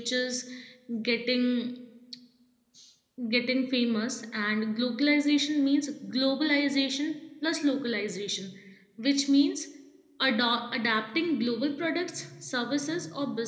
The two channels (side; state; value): both; identical; correlation 1.00